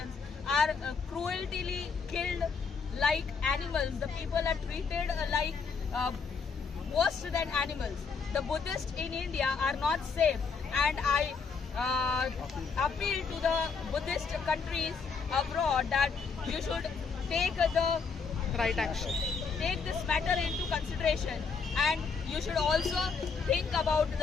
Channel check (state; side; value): quieter; right; 5.3 dB